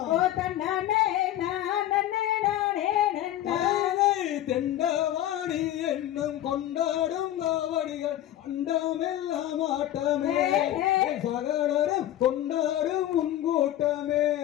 ஓ தன்னானே நானே நானே நன்னா தெண்டவாணி என்னும் கொண்டாடும் நாவடிகள் அண்டமெல்லாம் ஆட்டமே சகலரும் கொண்டாடும் முன்கூட்டமே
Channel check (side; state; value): right; quieter; 12.9 dB